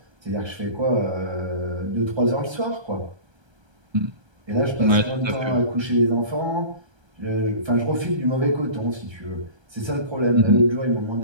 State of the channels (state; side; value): late; left; 1.3 ms